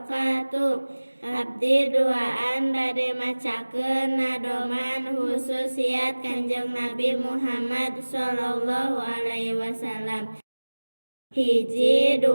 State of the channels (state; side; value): inverted; both; correlation -1.00